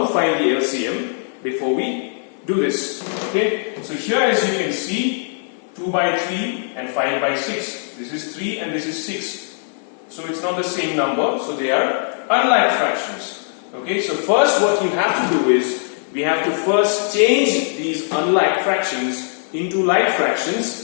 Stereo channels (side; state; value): right; silent; digital silence